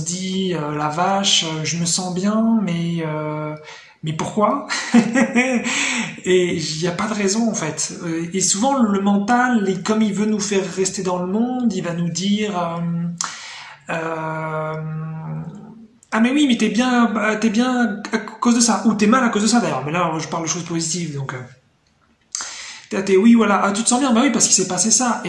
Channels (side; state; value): both; identical; correlation 1.00